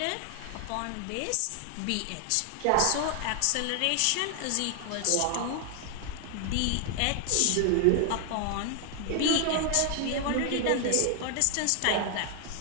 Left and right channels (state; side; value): different; both; correlation 0.00